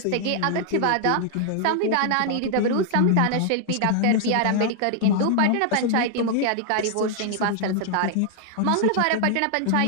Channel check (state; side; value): different; both; correlation 0.00